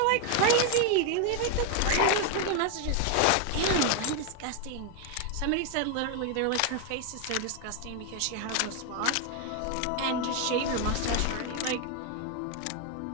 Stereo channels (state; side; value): different; both; correlation 0.01